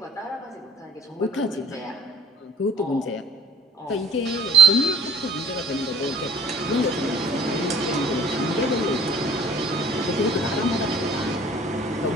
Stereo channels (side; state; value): both; normal; correlation 0.53